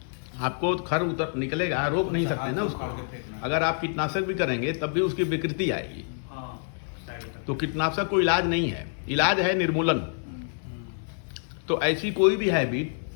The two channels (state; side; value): silent; right; 60 dB below the other